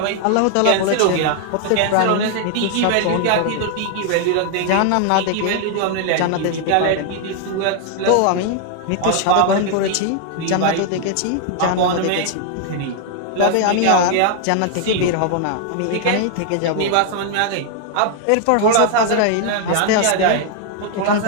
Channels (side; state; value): both; different; correlation 0.00